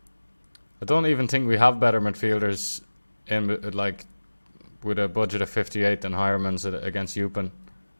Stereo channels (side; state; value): both; inverted; correlation -1.00